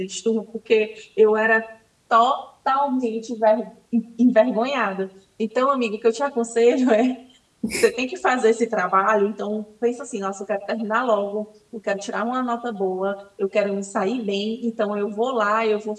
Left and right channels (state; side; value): identical; both; correlation 1.00